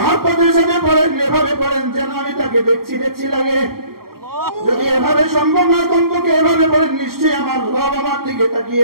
সাথে পড়েন এভাবে পড়েন যেন আমি তাকে দেখছি দেখছি লাগে যদি এভাবে সম্ভব না কমপক্ষে এভাবে পড়েন নিশ্চয়ই আমার রব আমার দিকে তাকিয়ে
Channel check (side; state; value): left; late; 0.93 ms